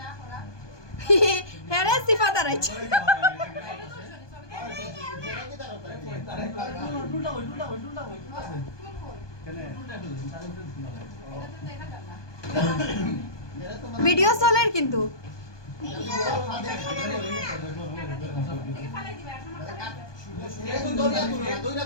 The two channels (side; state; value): right; late; 1.2 ms